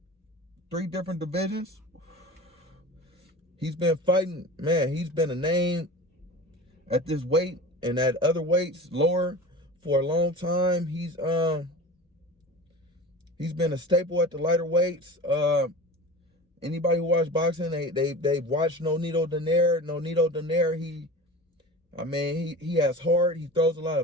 3 different divisions. He's been fighting, man, he's been a name at this weight and at other weights lower for a long time. He's been a staple at the lighter weights. Anybody who watched boxing, they've watched Nito Donaire. Nito Donaire, he has heart. He throws a lot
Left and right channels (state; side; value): normal; both; correlation 0.35